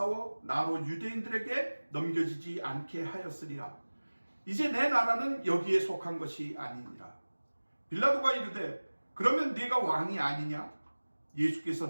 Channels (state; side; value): inverted; both; correlation -1.00